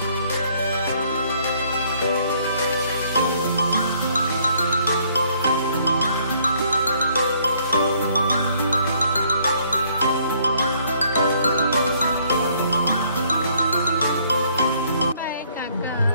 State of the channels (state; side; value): inverted; both; correlation -0.64